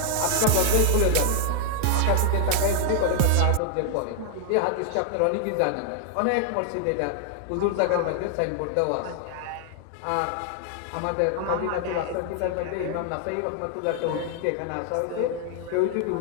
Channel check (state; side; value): different; both; correlation 0.00